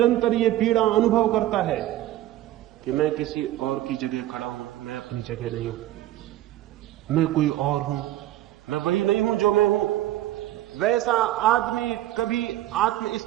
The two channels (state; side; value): quieter; left; 14.3 dB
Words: ये पीड़ा अनुभव करता है कि मैं किसी और की जगह खड़ा हूं, मैं अपनी जगह नहीं हूं, मैं कोई और हूं, मैं वही नहीं हूं जो मैं हूं। वैसा आदमी कभी आत्म